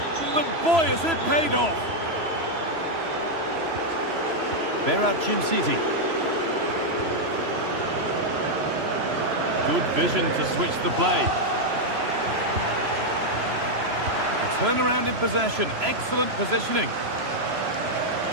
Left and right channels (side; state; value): left; late; 3.0 ms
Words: But boy, has it paid off. Berat City. Good vision to switch the play. A turnaround in possession. Excellent positioning.